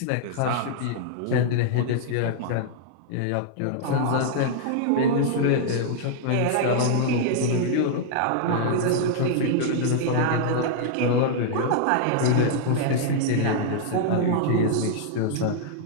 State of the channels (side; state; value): both; different; correlation -0.01